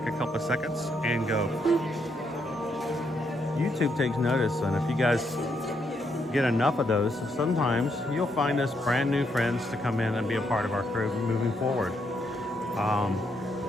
a couple of seconds and go. YouTube takes notice, and if you guys get enough of those, sometimes you'll find us brand new friends to come in and be a part of our crew moving forward.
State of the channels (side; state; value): both; normal; correlation 0.77